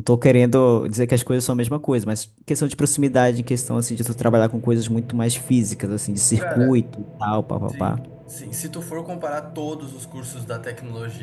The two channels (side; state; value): both; identical; correlation 1.00